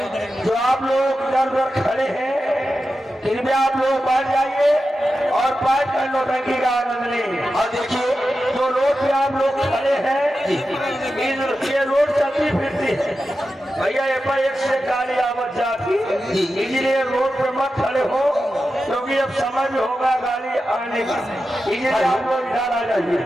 जो आप लोग इधर उधर खड़े हैं कृपया आप लोग बैठ जाइए और बैठ कर नौटंकी का आनंद लें। और देखिए जो रोड पे आप लोग खड़े हैं, ये रोड चलती फिरती है भैया, ये पर एक से गाड़ी आवत जाती, इसलिए रोड पे मत खड़े हो, क्योंकि अब समय भी होगा गाड़ी आने का, इसलिए आप लोग इधर आ जाइए।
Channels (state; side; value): normal; both; correlation 0.91